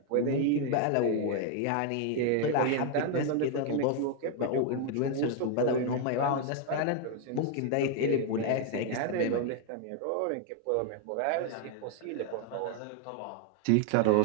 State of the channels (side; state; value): both; different; correlation 0.00